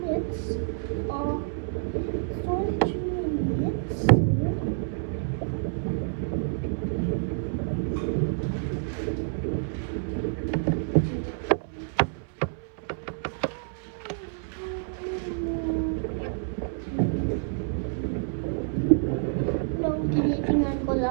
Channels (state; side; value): silent; left; 59 dB below the other